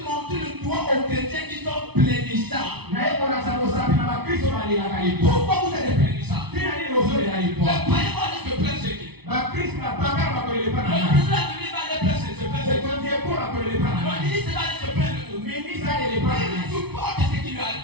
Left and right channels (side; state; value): left; late; 0.99 ms